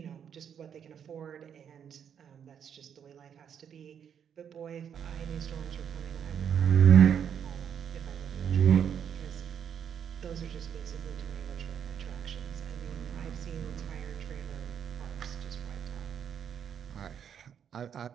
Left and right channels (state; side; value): quieter; left; 8.3 dB